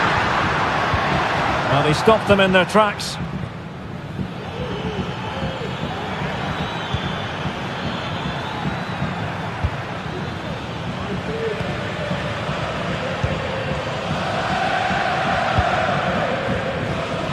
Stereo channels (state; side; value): identical; both; correlation 1.00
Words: Well, they stopped them in their tracks.